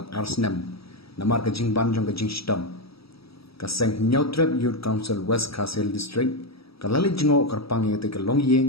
arsnam namar ka jing ban jong ka jing stam ka seng nyautrep youth council West Castle District kalali jingo karpang yeng te ka long yeng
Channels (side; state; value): right; late; 0.76 ms